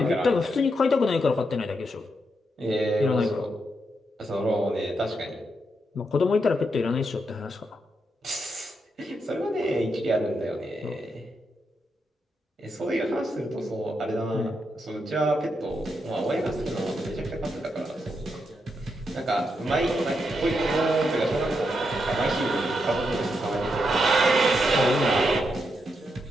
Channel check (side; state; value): both; normal; correlation 0.82